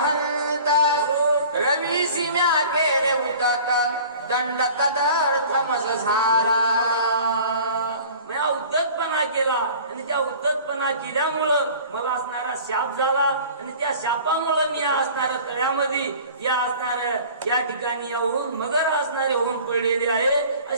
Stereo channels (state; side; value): inverted; both; correlation -0.44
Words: रवीसी म्या केले उदत दंड तदर्थमस झाला. म्या उद्धतपणा केला आणि त्या उद्धतपणा केल्यामुळं मला असणारा शाप झाला आणि त्या शापामुळे मी असणाऱ्या तळ्यामध्ये या असणाऱ्या या ठिकाणी येऊन मगर असणारे होऊन पडलेले आहे